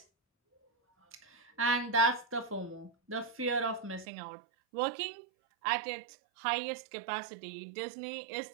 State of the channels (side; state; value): left; drops out; at 4.0 s